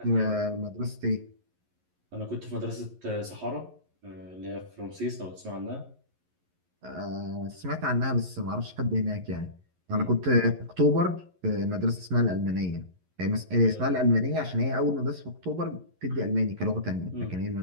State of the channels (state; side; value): late; left; 11 ms